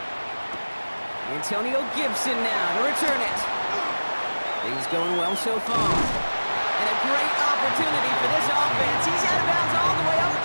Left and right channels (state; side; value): inverted; both; correlation -1.00